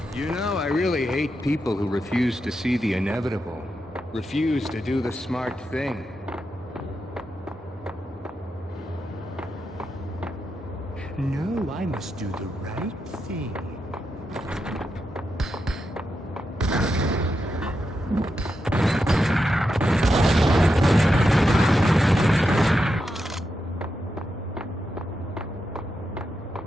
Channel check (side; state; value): both; normal; correlation 0.86